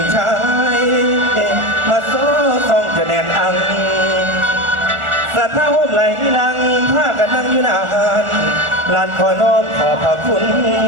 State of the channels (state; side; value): late; left; 1.4 ms